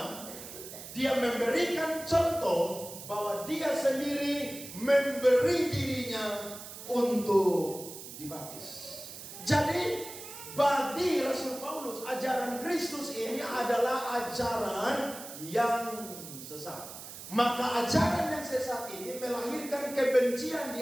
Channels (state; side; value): noise; right; hiss, 12 dB below the sound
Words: Dia memberikan contoh bahwa dia sendiri memberi dirinya untuk dibaptis. Jadi bagi Rasul Paulus, ajaran Kristus ini adalah ajaran yang sesat. Maka ajaran yang sesat ini melahirkan kebencian di